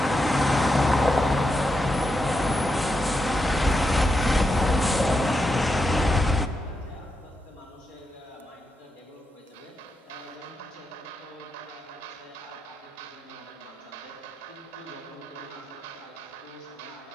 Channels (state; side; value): normal; both; correlation 0.85